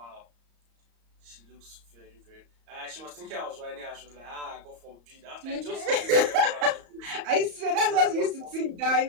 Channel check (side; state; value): left; late; 34 ms